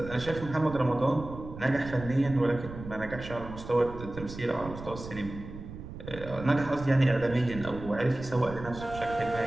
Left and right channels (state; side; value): noise; right; rumble, 12 dB below the sound